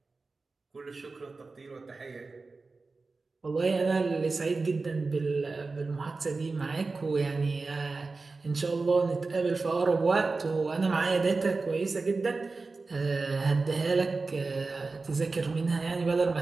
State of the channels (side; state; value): left; quieter; 3.9 dB